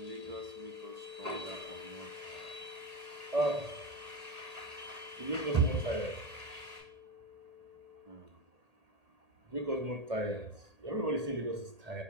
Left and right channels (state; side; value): late; left; 1.8 ms